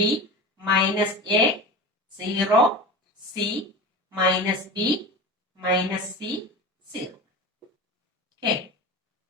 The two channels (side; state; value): both; normal; correlation 0.30